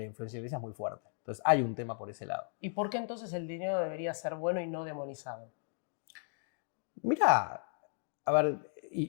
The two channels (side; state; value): right; silent; digital silence